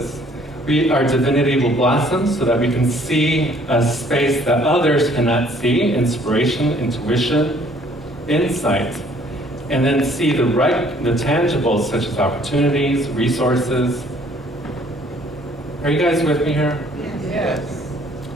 our divinity will blossom so that we can see a space that others cannot see, inspiration, intuition, insight, and then see the tangibles such as opportunities, resources. Are you guys with me here? Yes.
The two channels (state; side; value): normal; both; correlation 0.59